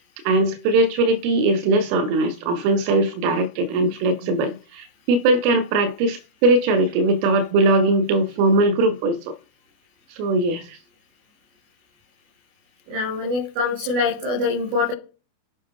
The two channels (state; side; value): late; left; 29 ms